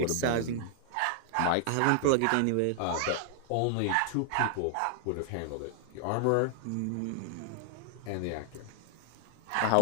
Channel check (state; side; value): different; both; correlation 0.00